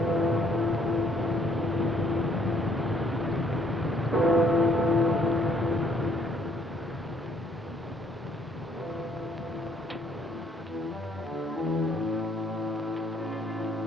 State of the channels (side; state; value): both; normal; correlation 0.65